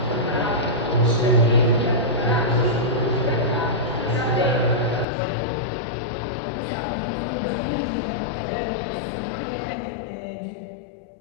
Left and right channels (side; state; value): right; drops out; at 5.1 s